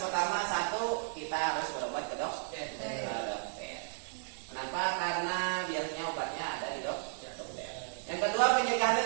satu kita harus berobat ke dokter. Kenapa? Karena biasanya obatnya ada di dokter. Yang kedua pencegahannya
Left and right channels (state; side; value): silent; left; 55 dB below the other